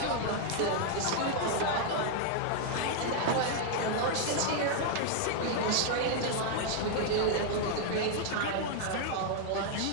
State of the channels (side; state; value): both; different; correlation 0.00